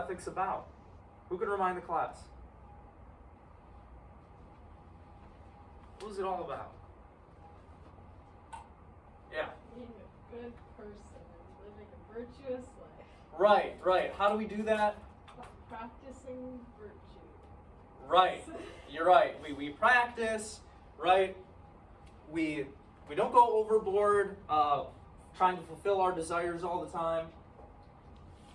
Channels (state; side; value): identical; both; correlation 1.00